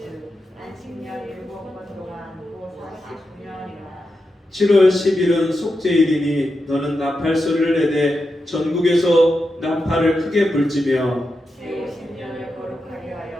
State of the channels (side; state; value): both; normal; correlation 0.88